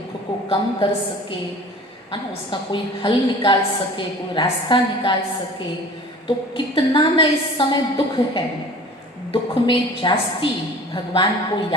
को कम कर सके, है ना, उसका कोई हल निकाल सके, कोई रास्ता निकाल सके। तो कितना न इस समय दुख है। दुख में जास्ती भगवान को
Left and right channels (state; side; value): normal; both; correlation 0.43